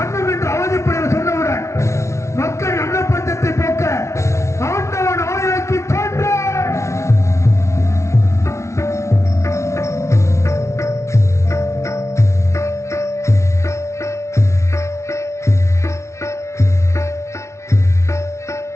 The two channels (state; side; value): late; right; 0.13 ms